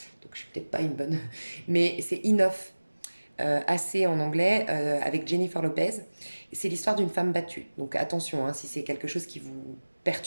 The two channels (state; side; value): inverted; both; correlation -1.00